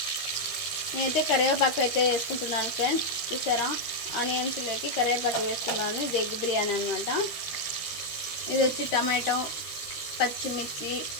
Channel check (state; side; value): late; right; 13 ms